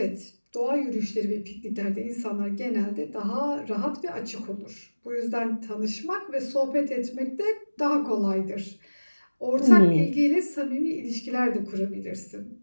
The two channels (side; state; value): both; inverted; correlation -1.00